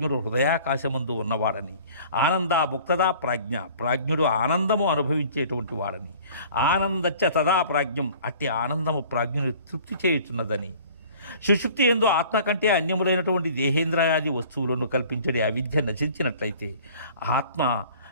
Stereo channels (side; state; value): both; inverted; correlation -0.49